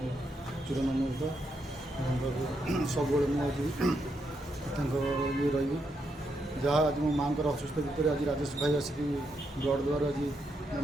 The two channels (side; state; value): both; normal; correlation 0.80